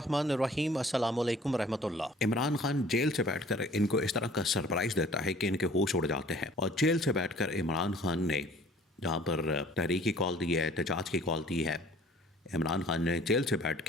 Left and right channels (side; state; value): both; normal; correlation 0.52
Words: الرحیم، السلام علیکم ورحمۃ اللہ۔ عمران خان جیل سے بیٹھ کر ان کو اس طرح کا سرپرائز دیتا ہے کہ ان کے ہوش اڑ جاتے ہیں، اور جیل سے بیٹھ کر عمران خان نے جہاں پر تحریک کی کال دی ہے، احتجاج کی کال دی ہے، عمران خان نے جیل سے بیٹھ